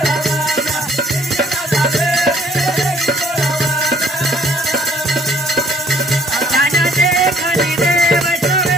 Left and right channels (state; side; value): normal; both; correlation 0.61